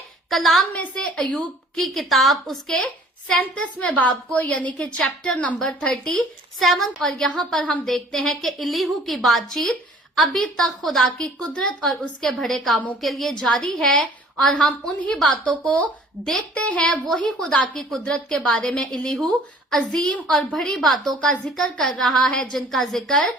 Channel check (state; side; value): normal; both; correlation 0.53